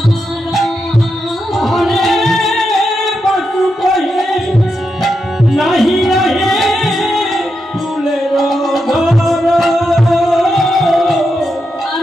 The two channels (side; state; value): both; normal; correlation 0.85